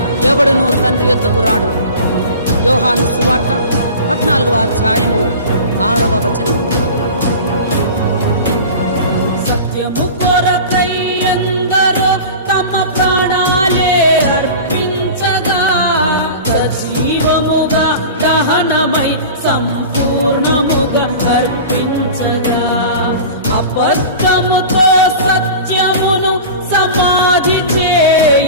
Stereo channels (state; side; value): inverted; both; correlation -0.36